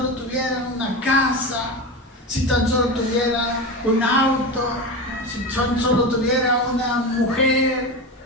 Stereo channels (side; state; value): both; normal; correlation 0.22